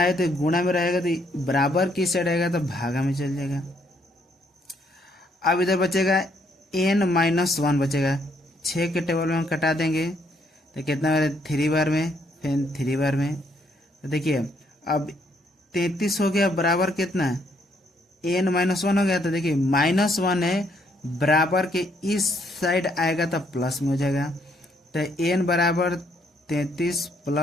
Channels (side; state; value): both; normal; correlation 0.70